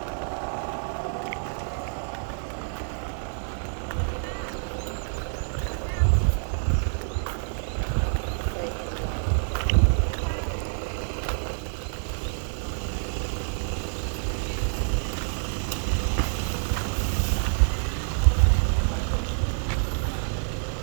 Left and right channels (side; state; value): left; silent; digital silence